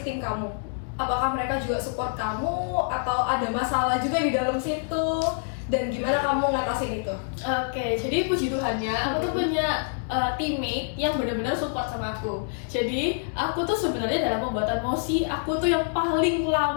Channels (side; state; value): right; silent; digital silence